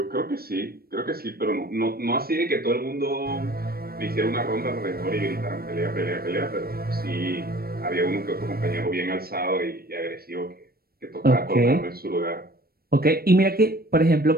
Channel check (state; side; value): late; left; 0.44 ms